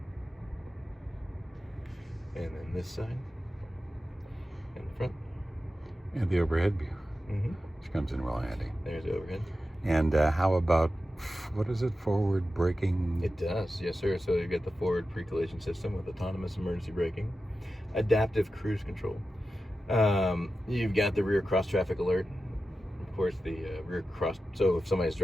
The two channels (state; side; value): normal; both; correlation 0.92